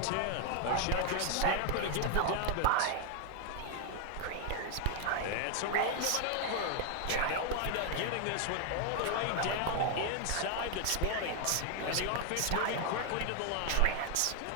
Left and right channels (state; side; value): different; both; correlation 0.00